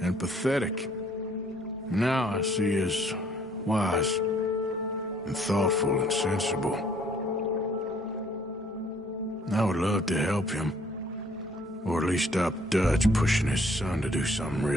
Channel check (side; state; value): both; normal; correlation 0.61